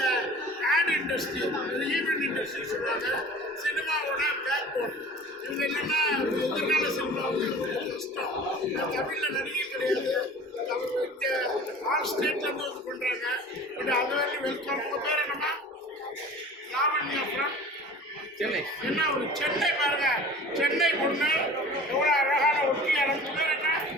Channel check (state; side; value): normal; both; correlation 0.41